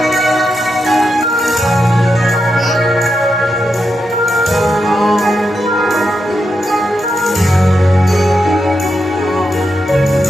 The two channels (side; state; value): both; normal; correlation 0.85